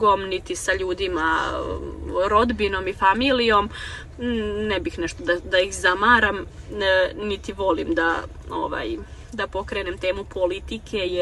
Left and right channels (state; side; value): identical; both; correlation 1.00